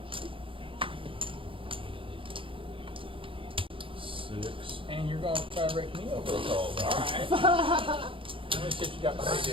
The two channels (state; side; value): late; left; 0.25 ms